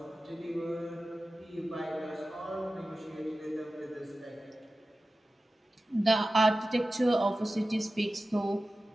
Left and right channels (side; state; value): both; normal; correlation 0.95